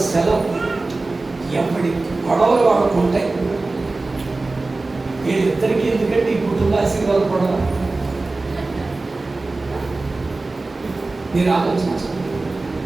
సెలవు ఎప్పటి గొడవలు వాళ్ళకు ఉంటాయి. వీళ్ళిద్దరికీ ఎందుకంటే ఈ కుటుంబ ఆశీర్వాదం గొడవ మీరు ఆలోచించండి.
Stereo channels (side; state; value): left; quieter; 3.3 dB